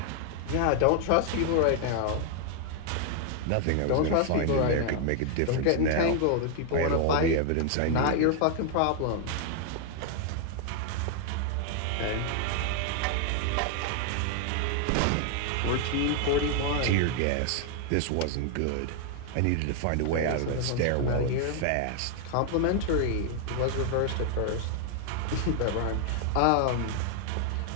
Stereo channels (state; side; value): different; both; correlation 0.00